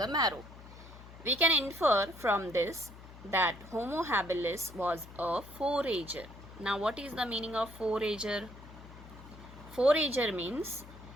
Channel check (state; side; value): noise; left; hum, 17 dB below the sound